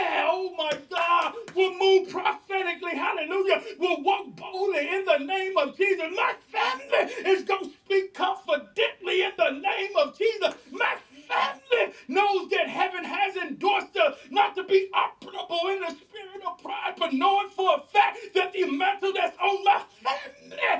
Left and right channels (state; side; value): identical; both; correlation 1.00